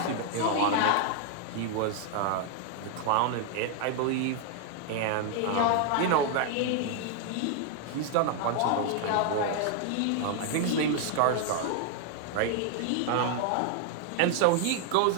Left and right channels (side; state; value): both; different; correlation 0.00